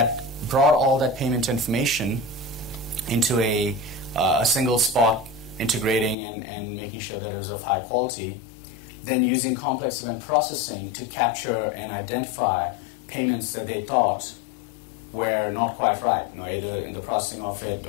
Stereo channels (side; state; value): right; drops out; at 6.2 s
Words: brought all that payment information into a single spot, integrating and making sure that it was of high quality, then using complex event processing to capture and identify payments that they thought were not quite right, either in the processing of it